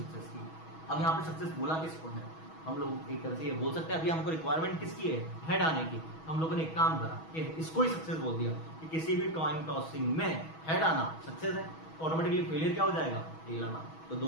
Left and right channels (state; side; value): late; right; 6.2 ms